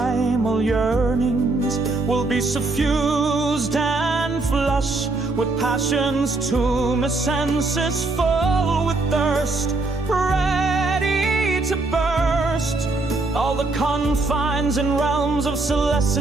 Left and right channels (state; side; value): quieter; left; 3.3 dB